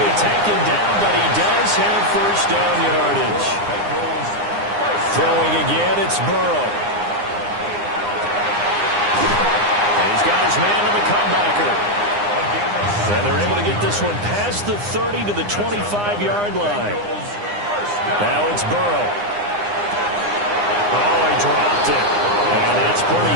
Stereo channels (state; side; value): late; left; 9.8 ms